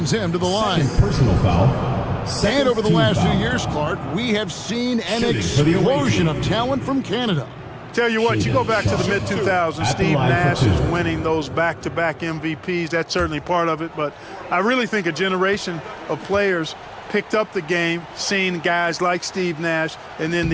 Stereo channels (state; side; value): identical; both; correlation 1.00